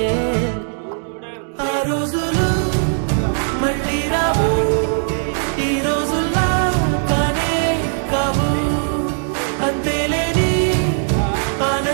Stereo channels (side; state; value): left; silent; digital silence